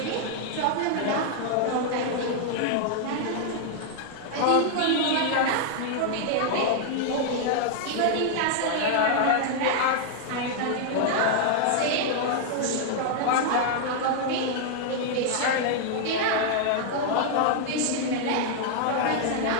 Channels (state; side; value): different; both; correlation 0.00